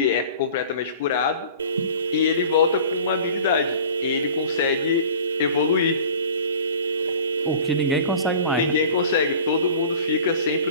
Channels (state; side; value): inverted; both; correlation -0.42